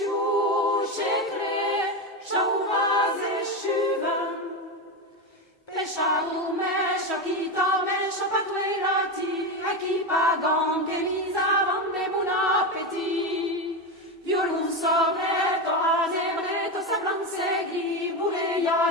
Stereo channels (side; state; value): both; normal; correlation 0.15